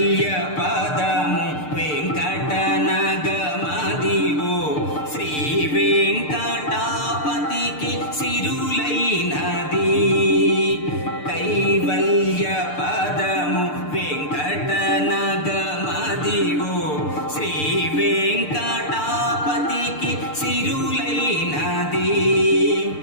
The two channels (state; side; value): late; right; 6.7 ms